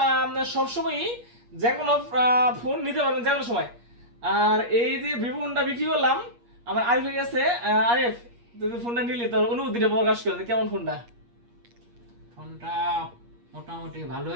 সবসময়ই যে কোনো ফোন নিতে পারবেন যে কোনো সময়। আর এই যে ভিভো ফোনটা বিক্রি করলাম আমার আরিফের কাছে। আরিফ, তুই ফোনটা নিলি, তোর অনুভূতিটা প্রকাশ করে কেমন ফোনটা? ফোনটা মোটামুটি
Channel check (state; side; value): late; left; 8.4 ms